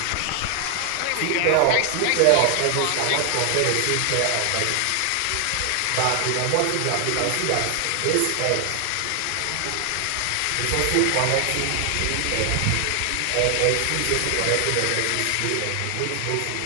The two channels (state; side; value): different; both; correlation 0.00